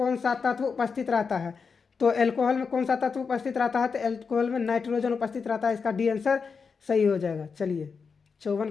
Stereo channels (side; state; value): right; quieter; 5.4 dB